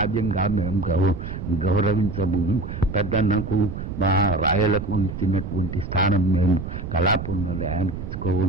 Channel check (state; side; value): noise; right; rumble, 7 dB below the sound